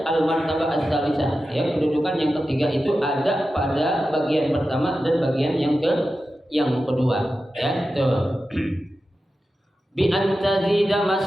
al-martabah ats-tsalisah. Ya, kedudukan yang ketiga itu ada pada bagian pertama dan bagian yang kedua. Ya, itu. Bi antazida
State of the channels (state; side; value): normal; both; correlation 0.92